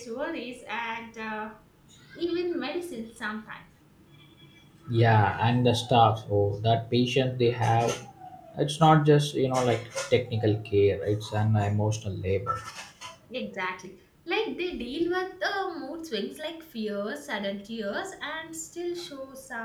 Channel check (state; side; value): identical; both; correlation 1.00